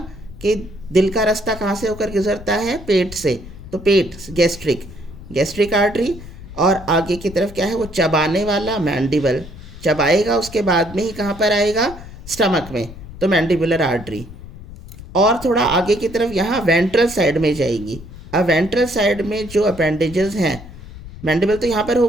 कि दिल का रास्ता कहाँ से होकर गुजरता है? पेट से। तो पेट, गैस्ट्रिक, गैस्ट्रिक आर्टरी। और आगे की तरफ क्या है? वो चबाने वाला मैंडिबल, चबाएगा उसके बाद में ही कहाँ पर आएगा? स्टमक में, तो मैंडिबुलर आर्टरी। और थोड़ा आगे की तरफ यहाँ वेंट्रल साइड में जाएगी। अब वेंट्रल साइड में जो अपेंडेजेस हैं, मैंडिबल तो यहाँ पर हो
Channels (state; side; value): noise; left; rumble, 15 dB below the sound